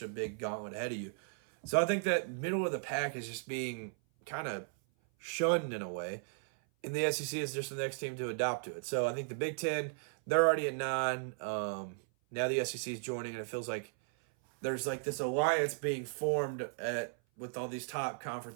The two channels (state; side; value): silent; left; 54 dB below the other